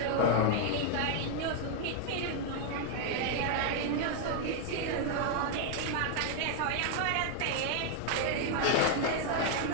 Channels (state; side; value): different; both; correlation 0.00